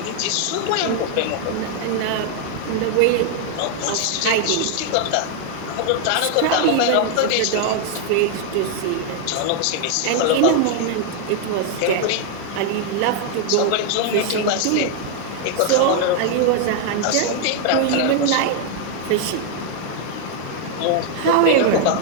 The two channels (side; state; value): both; different; correlation 0.00